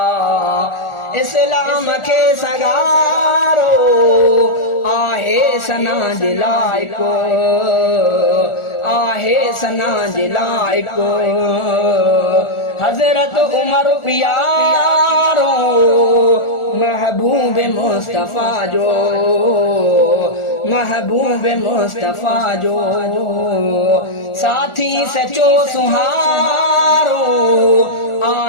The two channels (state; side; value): late; right; 1.4 ms